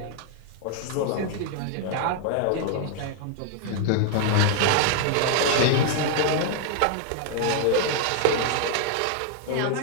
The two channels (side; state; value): both; different; correlation 0.00